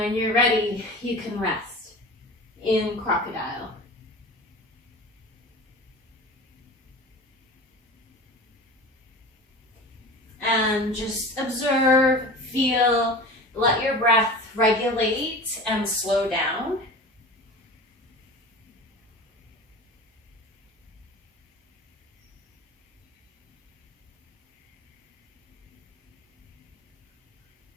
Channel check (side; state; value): both; normal; correlation 0.35